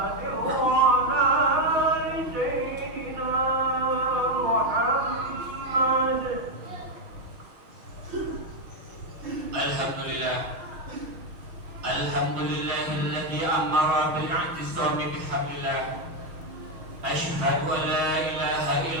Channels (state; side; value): late; left; 6.3 ms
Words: Alhamdulillah. Alhamdulillahilladzi amara bil i'tisami bihablillah. Asyhadu an la ilaha